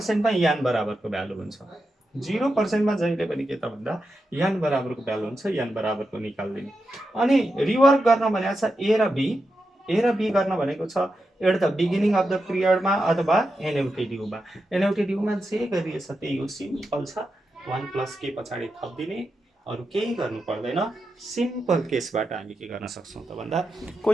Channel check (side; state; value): both; normal; correlation 0.88